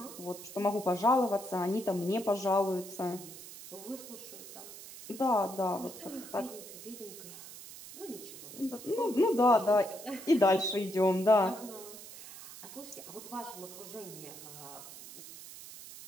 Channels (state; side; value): noise; right; hiss, 14 dB below the sound